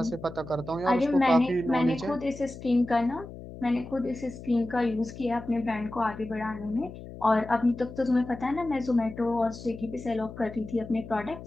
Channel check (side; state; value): left; noise; hum, 13 dB below the sound